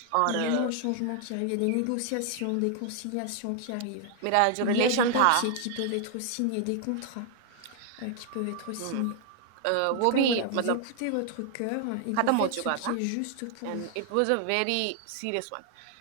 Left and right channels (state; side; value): different; both; correlation 0.00